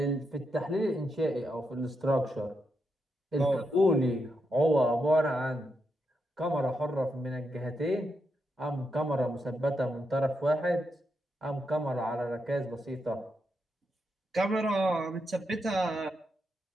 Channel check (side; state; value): both; normal; correlation 0.83